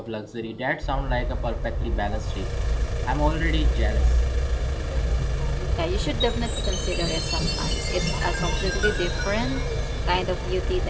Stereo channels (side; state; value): both; identical; correlation 1.00